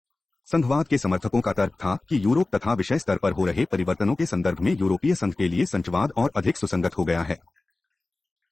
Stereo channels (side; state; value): right; quieter; 3.1 dB